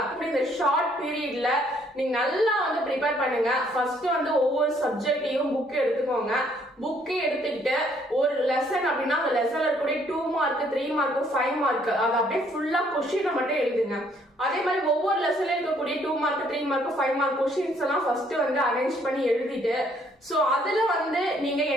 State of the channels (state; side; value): normal; both; correlation 0.66